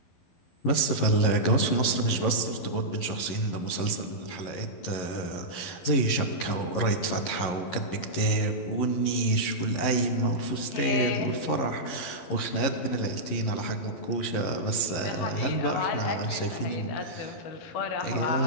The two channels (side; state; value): right; late; 11 ms